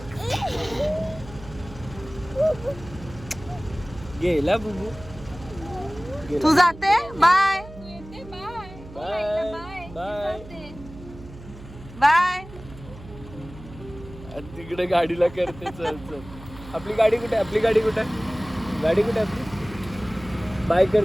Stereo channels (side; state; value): right; noise; hum, 16 dB below the sound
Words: गेला बुबू. तू जाते. Bye bye. बाय. तिकडे गाडीला करते. चल चल. आपली गाडी कुठे आहे? गाडी कुठे आहे आपली? बाय कर.